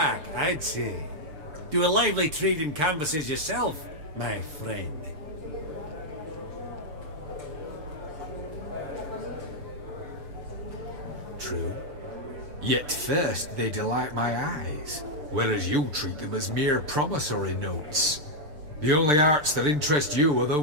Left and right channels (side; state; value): left; late; 6.7 ms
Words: I'd say. Do a lively trade in canvases yourself, my friend. True. Yet first they delight my eyes, whereas you treat them as mere promissory notes. The only arts that interest you are